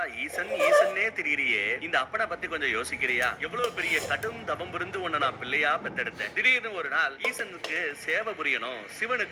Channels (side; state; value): both; identical; correlation 1.00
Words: ஈசன் ஈசன்னே திரியிறியே, இந்த அப்பனை பத்தி கொஞ்சம் யோசிக்கிறியா? எவ்வளவு பெரிய கடும் தவம் இருந்து உன்னை நான் பிள்ளையா பெத்தெடுத்தேன். திடீர்னு ஒரு நாள் ஈசனுக்கு சேவை புரியணும்,